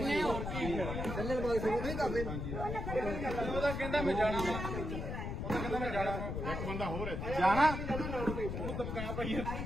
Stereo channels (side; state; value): left; noise; rumble, 4 dB below the sound